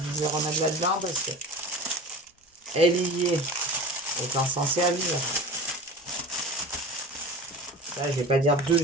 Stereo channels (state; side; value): normal; both; correlation 0.35